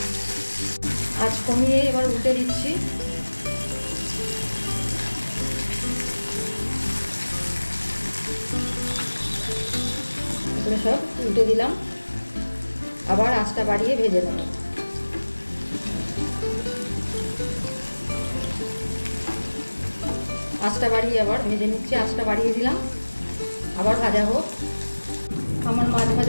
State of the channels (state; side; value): inverted; both; correlation -1.00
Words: আঁচ কমিয়ে এবার উল্টে দিচ্ছি। এগুলো সব উল্টে দিলাম, আবার আঁচটা বাড়িয়ে ভেজে নেব। আঁচটা বাড়িয়ে আবার ভেজে নিচ্ছি, আঁচটা বাড়িয়ে দিলাম, আবার ভাজা হোক। আমার মাছ